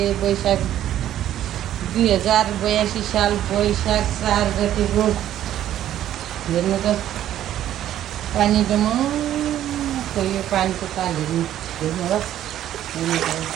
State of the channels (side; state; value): left; quieter; 11.9 dB